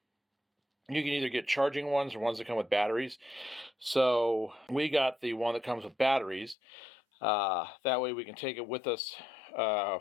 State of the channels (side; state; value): right; drops out; at 6.6 s